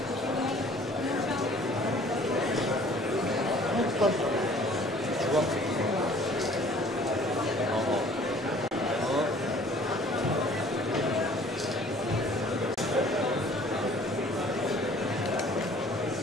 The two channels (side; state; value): both; normal; correlation 0.53